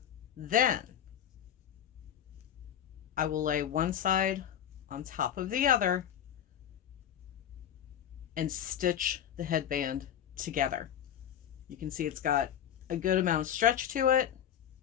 Then I will lay one side on top of the other and stitch the headband together. You can see it's got a good amount of stretch to it.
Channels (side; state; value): right; quieter; 9.8 dB